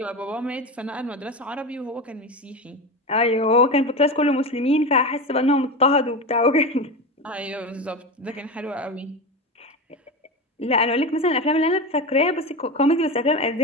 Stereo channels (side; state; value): both; normal; correlation 0.22